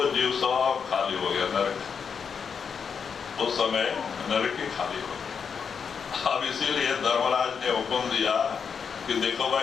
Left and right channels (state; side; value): quieter; right; 6.4 dB